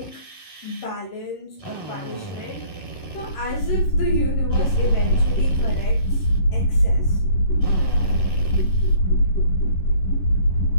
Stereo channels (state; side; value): late; right; 11 ms